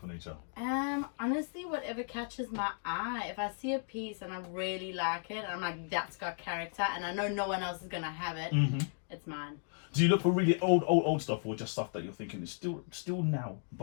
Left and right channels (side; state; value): right; silent; 55 dB below the other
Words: of nature? Honestly, whatever catches my eye. If I see a piece and I really like it, I'm like, that's got character, and I know no one else is gonna have it. Mm-hmm. It's mine. Do you look for really old stuff, or just stuff that you're thinking is still now,